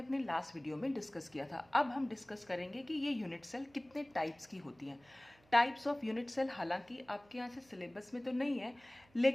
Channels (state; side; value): noise; right; hum, 30 dB below the sound